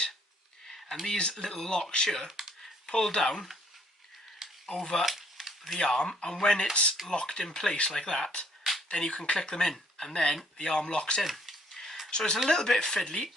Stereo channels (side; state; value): both; normal; correlation 0.64